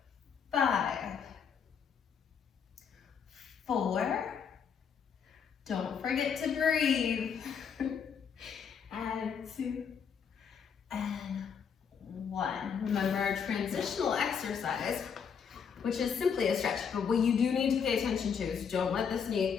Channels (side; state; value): right; quieter; 6.9 dB